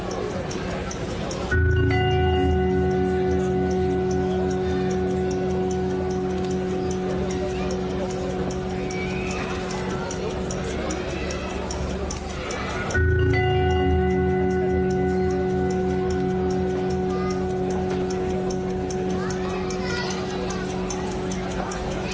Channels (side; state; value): both; identical; correlation 1.00